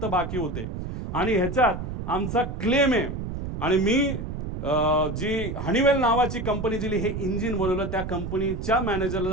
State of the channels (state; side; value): noise; right; rumble, 6 dB below the sound